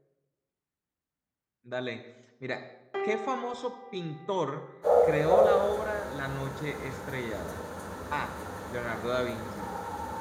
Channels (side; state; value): both; identical; correlation 1.00